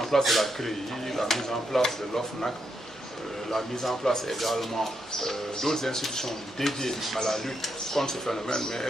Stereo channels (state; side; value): noise; right; hum, 26 dB below the sound